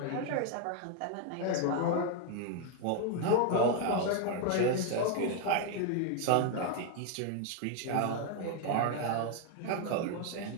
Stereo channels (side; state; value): both; different; correlation 0.01